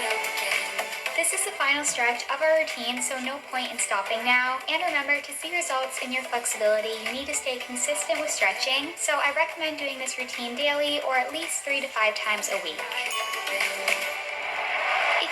up again. This is the final stretch of our routine, so no point in stopping now. And remember, to see results in your flexibility, you need to stay consistent with stretching. So I recommend doing this routine daily or at least 3 to 5 times a week. If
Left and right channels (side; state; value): both; identical; correlation 1.00